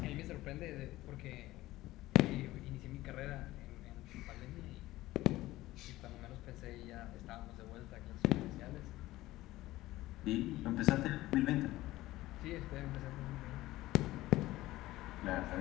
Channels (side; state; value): right; quieter; 17.0 dB